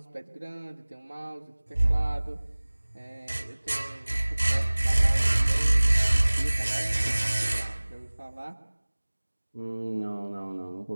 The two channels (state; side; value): inverted; both; correlation -1.00